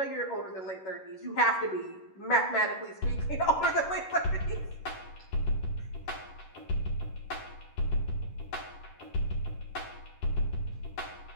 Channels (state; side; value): late; right; 11 ms